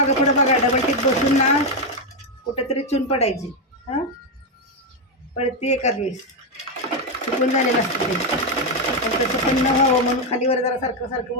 पुढं बघा. डबल टिप बसून ना कुठेतरी चून पडायची. हां पडते एखाद वेळेस, चुकून झालेलं असतं ते. पण तसं पण न व्हावं म्हणून खालीवर जरा सारखं सारखं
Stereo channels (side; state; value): both; normal; correlation 0.05